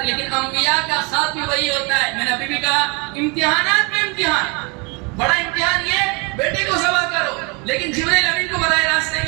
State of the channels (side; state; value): left; quieter; 30.9 dB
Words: لیکن انبیاء کا خواب بھی وہی ہوتا ہے. میں نے ابھی بھی کہا امتحانات میں امتحان. بڑا امتحان یہ بیٹے کو ذبح کرو، لیکن جبرائیل امین کو براہ راست نہیں